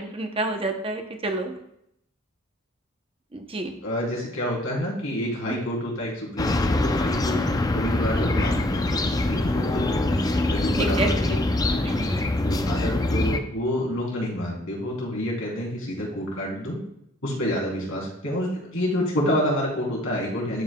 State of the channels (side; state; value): both; normal; correlation 0.60